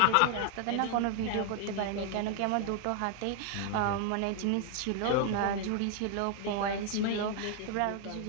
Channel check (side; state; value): both; different; correlation 0.00